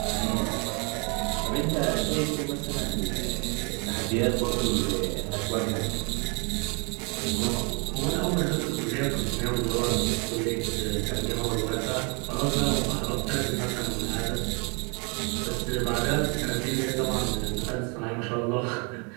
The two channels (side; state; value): left; quieter; 33.4 dB